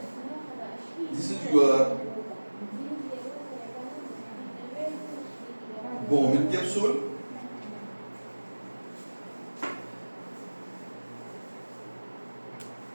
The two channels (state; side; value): inverted; both; correlation -1.00